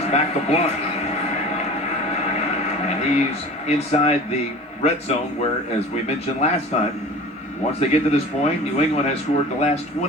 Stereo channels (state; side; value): normal; both; correlation 0.39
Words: back to Blunt. And he's inside the red zone where, as we mentioned last time, once they get to this point, New England has scored the last